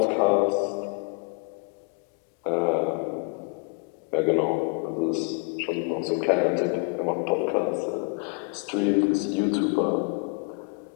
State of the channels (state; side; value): quieter; right; 35.6 dB